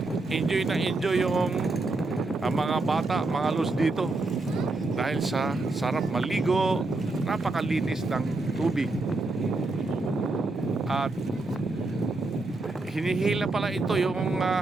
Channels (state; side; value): quieter; left; 3.2 dB